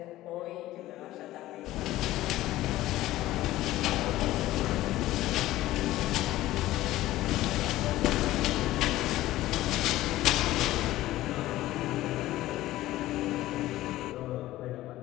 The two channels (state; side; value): quieter; right; 15.8 dB